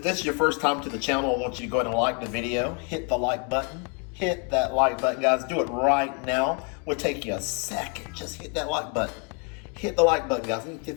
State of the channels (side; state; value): right; quieter; 37.1 dB